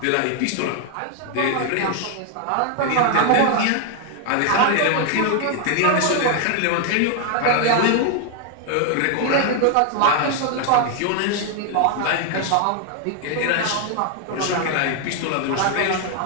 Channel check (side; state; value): both; different; correlation 0.00